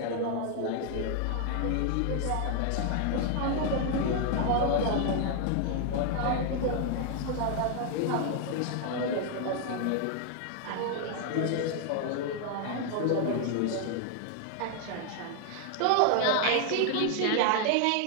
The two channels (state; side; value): different; both; correlation 0.00